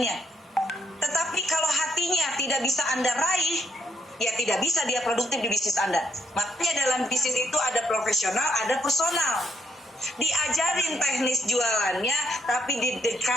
Tetapi kalau hatinya tidak bisa Anda raih, ya tidak bisa dia produktif di bisnis Anda. Makanya dalam bisnis itu ada profesional, ada personal. Diajarin teknis jualannya, tapi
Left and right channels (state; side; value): normal; both; correlation 0.75